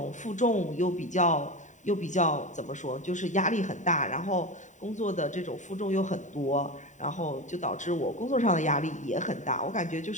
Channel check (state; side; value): late; right; 0.36 ms